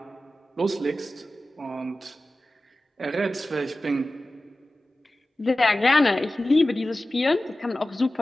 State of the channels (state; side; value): normal; both; correlation 0.96